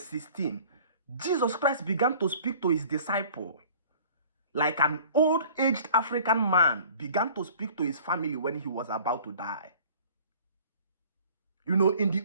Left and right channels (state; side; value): inverted; both; correlation -0.49